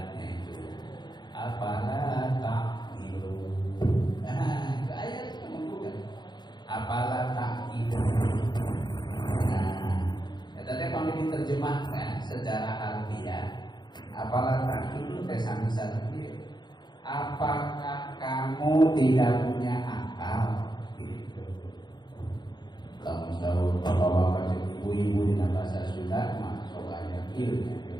itu apalah ta'qilu. Itu ayat itu menggugat. Apalah ta'qilu. Tadi kalau diterjemahkan secara harfiah, apalah ta'qilu sami sarfi. Apakah kamu tidak punya akal? Gitu. Kalau tahu bapak-bapak ibu-ibu di bahasa Sunda masuk ayat ilmu.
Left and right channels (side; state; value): right; late; 0.21 ms